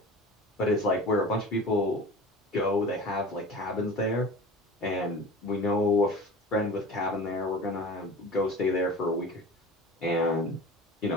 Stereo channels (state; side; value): normal; both; correlation 0.37